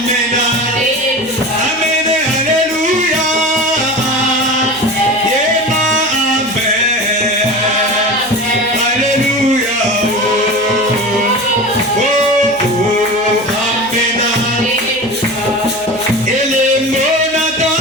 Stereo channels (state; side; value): noise; right; hum, 26 dB below the sound